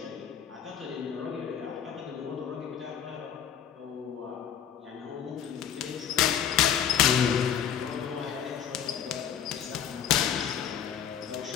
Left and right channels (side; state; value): right; quieter; 9.1 dB